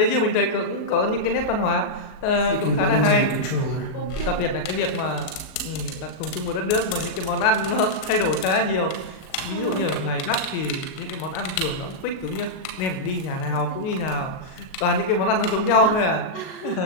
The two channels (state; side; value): late; right; 38 ms